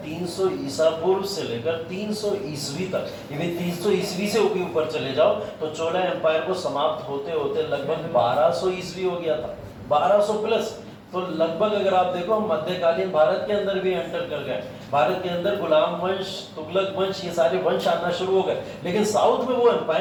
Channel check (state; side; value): identical; both; correlation 1.00